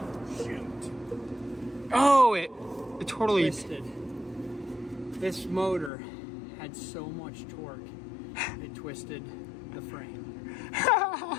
Shoot. Oh, it totally Twisted. This motor had so much torque, it twisted the frame.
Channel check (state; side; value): drops out; right; at 5.9 s